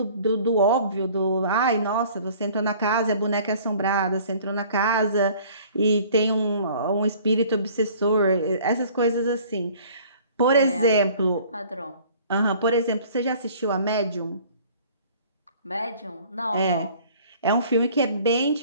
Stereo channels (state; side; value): inverted; both; correlation -0.52